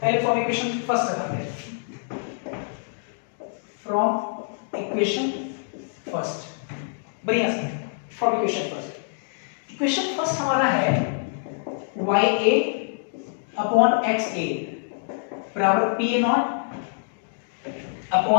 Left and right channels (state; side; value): silent; right; digital silence